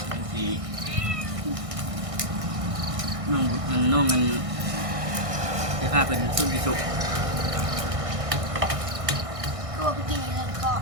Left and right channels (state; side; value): late; left; 1.6 ms